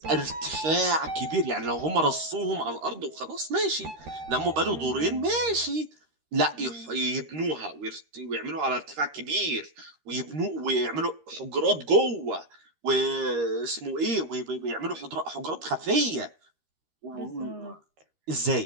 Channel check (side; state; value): left; late; 13 ms